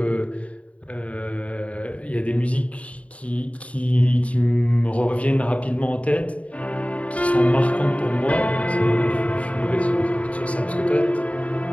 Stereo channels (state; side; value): late; right; 0.066 ms